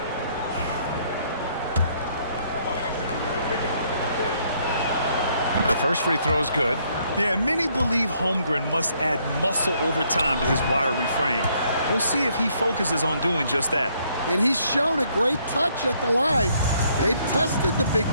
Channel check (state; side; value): inverted; both; correlation -0.68